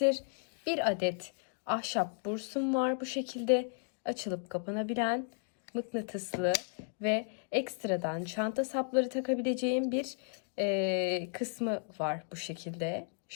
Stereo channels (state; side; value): silent; right; 55 dB below the other